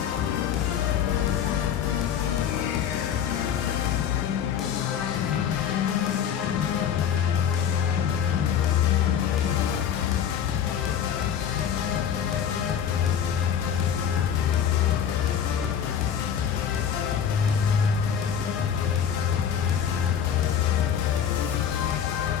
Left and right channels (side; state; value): right; quieter; 8.6 dB